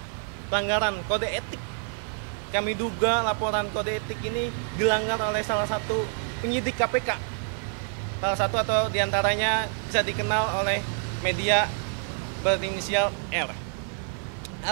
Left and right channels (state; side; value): silent; left; 57 dB below the other